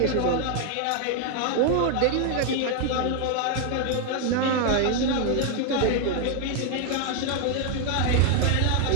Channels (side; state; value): both; different; correlation 0.00